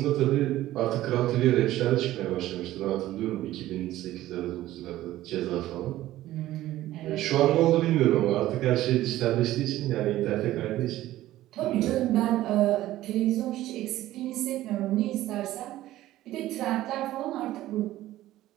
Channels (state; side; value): quieter; left; 15.0 dB